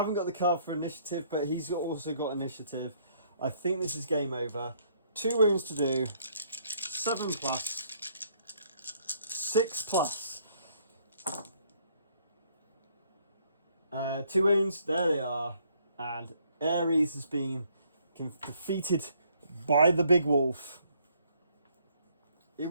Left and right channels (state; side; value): inverted; both; correlation -0.66